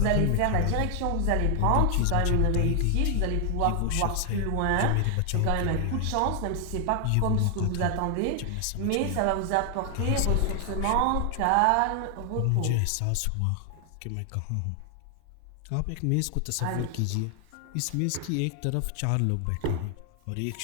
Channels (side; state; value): both; different; correlation 0.00